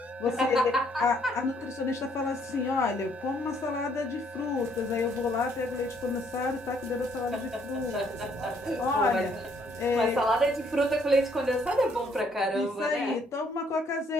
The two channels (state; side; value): normal; both; correlation 0.67